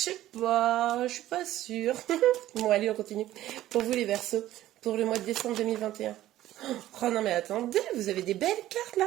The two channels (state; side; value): quieter; left; 14.2 dB